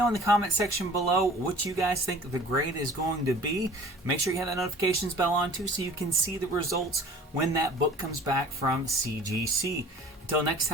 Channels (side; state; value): both; normal; correlation 0.46